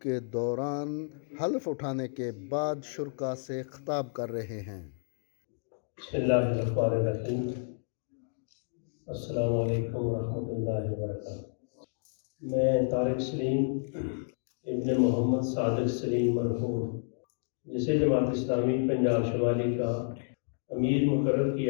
کے دوران حلف اٹھانے کے بعد شرکاء سے خطاب کر رہے ہیں۔ بسم اللہ الرحمن الرحیم۔ السلام علیکم ورحمۃ اللہ وبرکاتہ۔ میں طارق سلیم ابن محمد صادق سلیم مرحوم، جسے جماعت اسلامی پنجاب شمالی کا امیر مقرر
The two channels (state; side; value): silent; right; digital silence